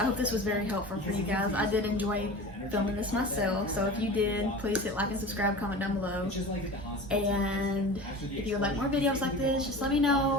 this was very helpful for you guys. I did enjoy filming this myself, so if you did, please hit like and subscribe, comment down below. And if you would like more videos like this, just let me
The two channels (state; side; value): normal; both; correlation 0.34